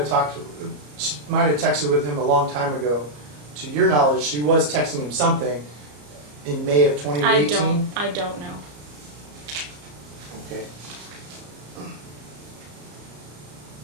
texted with him a long time ago, to your knowledge, she was texting him something in May of 2018? I don't know. Okay.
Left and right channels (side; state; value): left; late; 34 ms